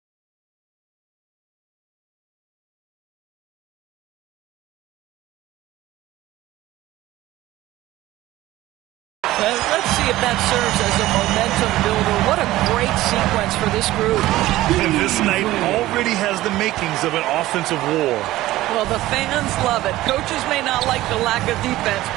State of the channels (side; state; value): left; quieter; 16.3 dB